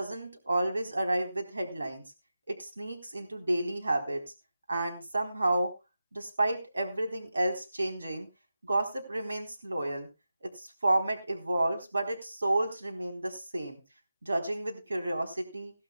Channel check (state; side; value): inverted; both; correlation -0.92